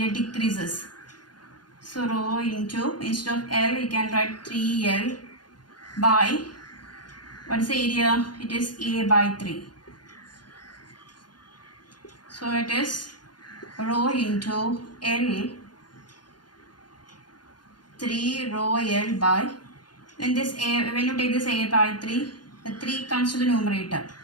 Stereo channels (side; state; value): right; late; 0.70 ms